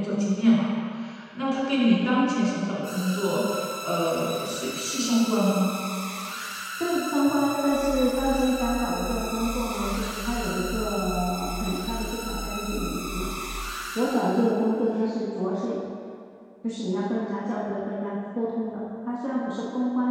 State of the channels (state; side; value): identical; both; correlation 1.00